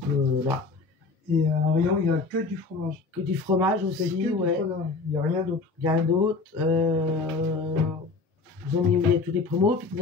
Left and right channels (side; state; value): right; quieter; 4.0 dB